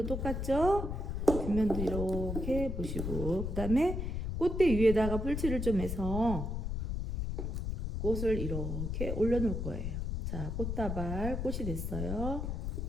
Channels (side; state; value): left; noise; rumble, 2 dB below the sound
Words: 똑같죠? 뒷면도 이렇게 보시고 그 다음에 꽃대 위에다가 풀칠을 좀 해서 꽃을 이렇게 올려놓을 거예요. 자, 꽃다발 꽃이 됐어요.